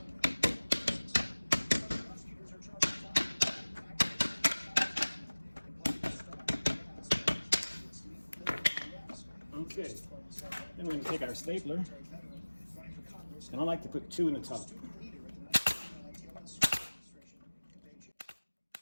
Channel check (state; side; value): inverted; both; correlation -1.00